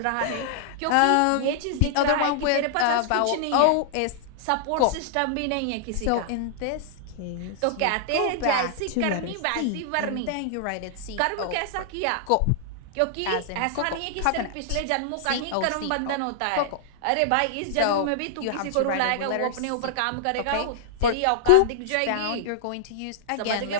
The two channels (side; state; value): both; different; correlation -0.01